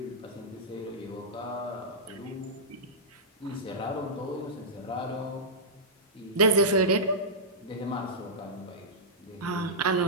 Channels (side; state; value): both; normal; correlation -0.13